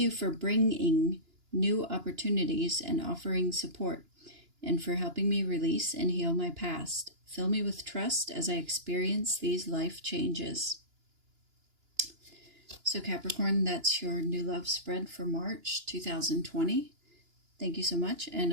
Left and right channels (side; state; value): left; late; 2.9 ms